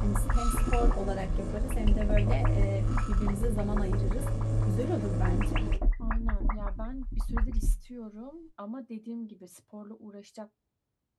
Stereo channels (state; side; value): identical; both; correlation 1.00